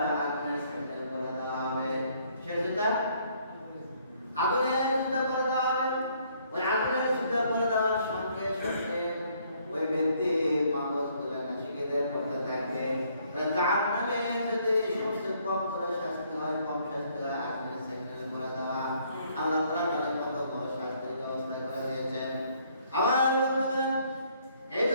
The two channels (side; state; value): both; inverted; correlation -0.66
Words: আগুনের স্যান্ডেল করে দেওয়া হবে। সে জুতা আগুনের জুতা করে দেওয়া হবে। ওই আগুনের জুতা করে দেওয়ার সঙ্গে সঙ্গে ওই ব্যক্তি মাগজগুলো নাসিকাতে পড়তে থাকবে। জাহান্নামে যদি সবচেয়ে কম করে শাস্তি হয়, কম শাস্তি হয় আগুনের স্যান্ডেল করে দেওয়া। আল্লাহ তাআলা তাদের কত বড় শাস্তির ব্যবস্থা করে দিয়েছেন। আমার বন্ধুগণ এই